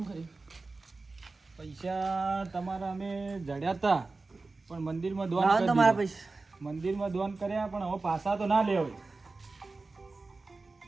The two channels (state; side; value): quieter; left; 3.6 dB